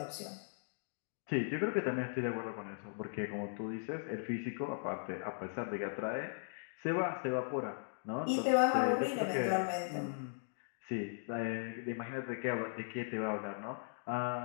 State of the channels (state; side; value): silent; right; digital silence